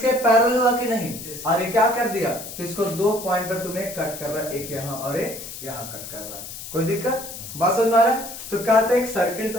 पैरेलल हुआ कि नहीं? और ये क्या कर दिया? तो इसको 2 पॉइंट पर तुम्हें कट कर रहा है, एक यहां और एक यहां कट कर रहा है। कोई दिक्कत? बात समझ में आ रहा है? तो कहते हैं एक सर्किल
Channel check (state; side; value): noise; left; hiss, 11 dB below the sound